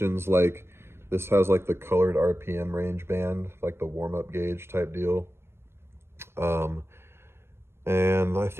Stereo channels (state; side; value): late; left; 0.12 ms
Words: like this has like the colored RPM range band, like the warm-up gauge type deal. And I